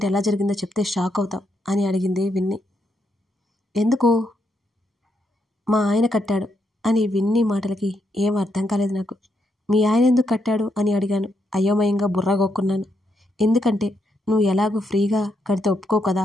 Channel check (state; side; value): normal; both; correlation 0.79